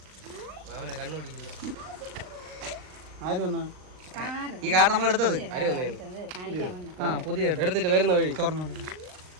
ഈ കാർ നമ്മൾ എടുത്തത് പുതിയ എടുത്തിട്ട് വരുന്ന വഴി തുറന്നു.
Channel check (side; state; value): left; late; 39 ms